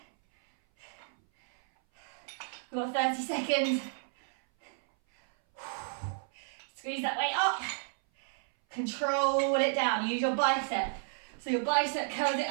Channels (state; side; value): silent; left; 57 dB below the other